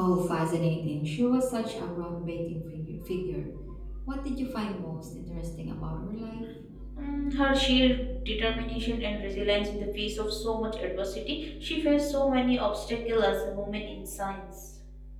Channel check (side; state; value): both; identical; correlation 1.00